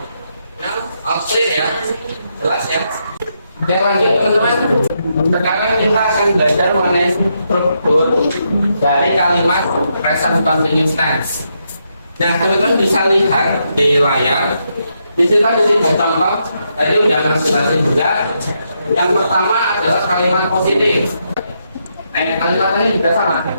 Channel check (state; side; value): inverted; both; correlation -0.80